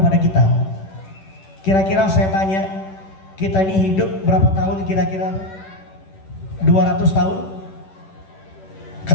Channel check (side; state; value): right; late; 10 ms